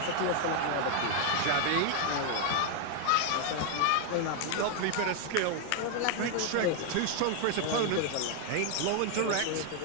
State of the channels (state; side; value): different; both; correlation 0.01